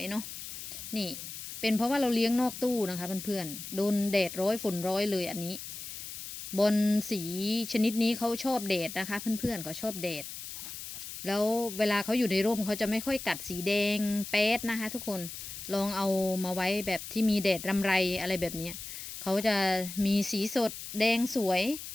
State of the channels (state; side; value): noise; left; hiss, 9 dB below the sound